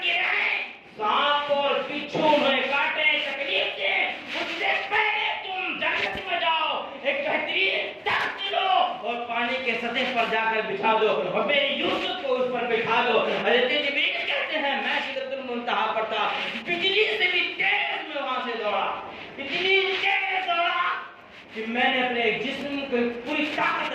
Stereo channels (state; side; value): identical; both; correlation 1.00